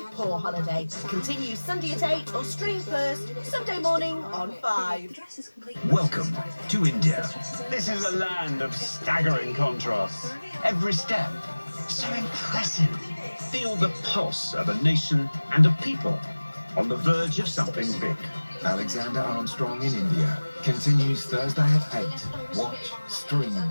poor holiday. Continue Sunday at 8 or stream first Sunday morning on 5. Welcome to India. This is a land of staggering contrasts. Every step, so impressive. Feel the pulse of a nation and a people on the verge of something big. Alexander Armstrong in India continues Thursday at 8. Watch, stream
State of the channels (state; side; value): inverted; both; correlation -1.00